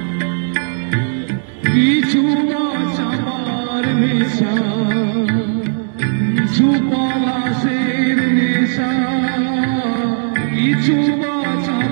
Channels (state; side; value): silent; left; digital silence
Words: কিছু চাপার নেশা, কিছু পলাশের নেশা, কিছু